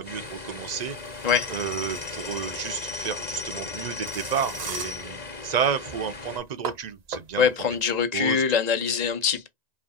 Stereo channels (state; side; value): late; left; 1.9 ms